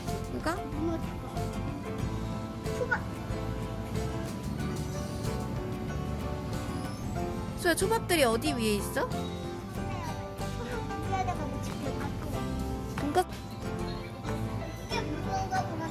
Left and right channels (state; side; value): identical; both; correlation 1.00